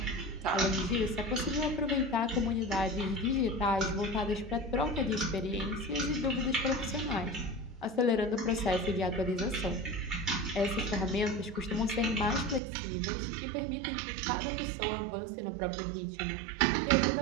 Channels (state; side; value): drops out; left; at 12.6 s